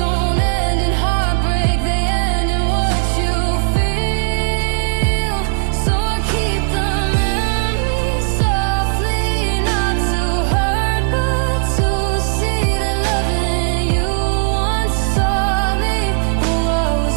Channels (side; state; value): left; silent; digital silence